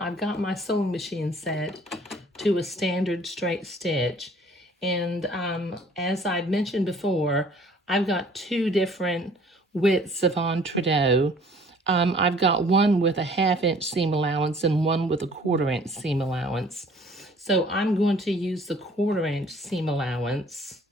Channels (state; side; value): normal; both; correlation 0.55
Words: got my sewing machine set to a standard straight stitch, and as I've mentioned before, I've got two different widths of entredot. I've got one with a 1/2 inch seam allowance and one with a 1/4 inch seam allowance. So I'm going to use the 1/4 inch seam allowance